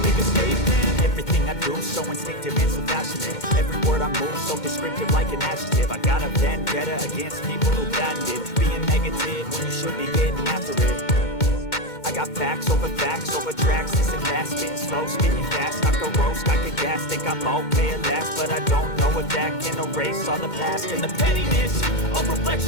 make a statement. Everything I do so instinctive and so passionate. Every word I move so descriptive like an adjective. I got a vendetta against people who patented being negative when you should be getting after it. I got facts over tracks, this and that, spitting slow, spitting fast, I could roast, I could gas, think I'm okay at last, but I don't know if that can erase all the past. And the pettiness, a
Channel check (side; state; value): right; late; 2.2 ms